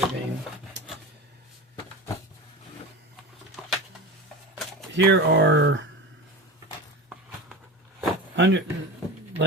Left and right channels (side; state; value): both; normal; correlation 0.28